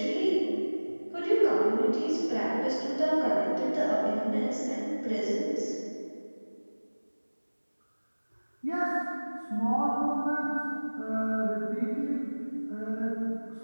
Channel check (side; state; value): both; inverted; correlation -1.00